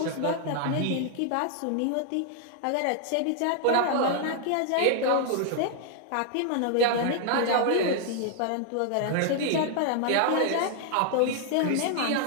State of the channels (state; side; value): different; both; correlation 0.00